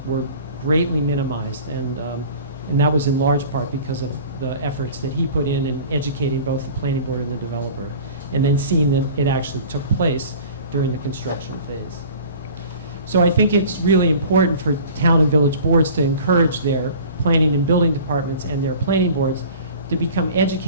were greatly minimized, and that was in large part because of the efforts that he put in educating both the planning board and the developer, and then seeing that it actually took place during the construction phase. So I think it's really important for town and village boards to encourage their planning and building departments and their planning boards to become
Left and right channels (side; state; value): both; inverted; correlation -0.43